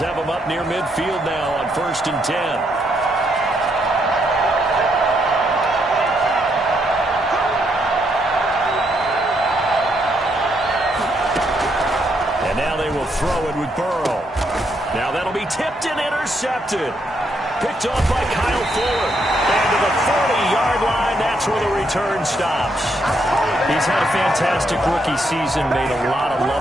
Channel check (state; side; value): normal; both; correlation 0.76